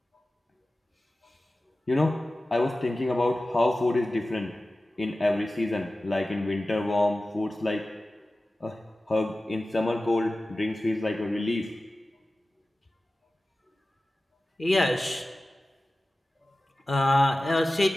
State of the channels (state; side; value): normal; both; correlation 0.96